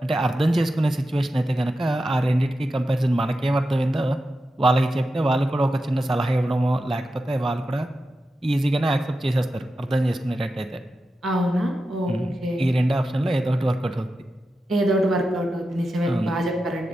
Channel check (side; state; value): both; normal; correlation 0.91